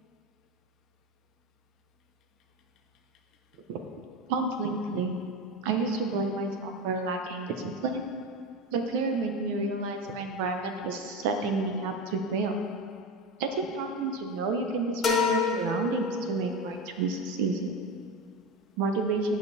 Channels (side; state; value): both; normal; correlation 0.21